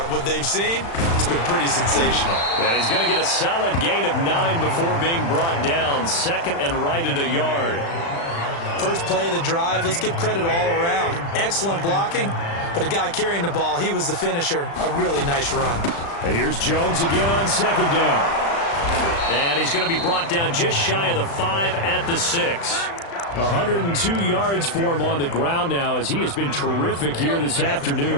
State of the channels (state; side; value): late; right; 35 ms